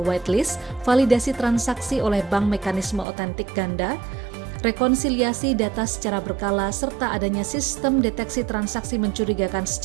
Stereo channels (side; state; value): left; drops out; at 3.1 s